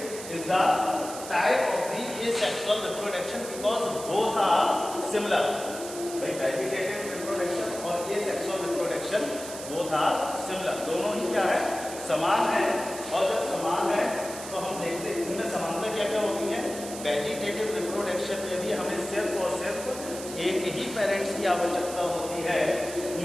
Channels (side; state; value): right; noise; hiss, 11 dB below the sound